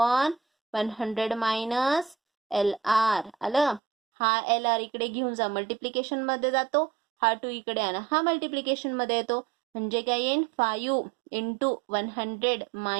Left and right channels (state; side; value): drops out; left; at 3.8 s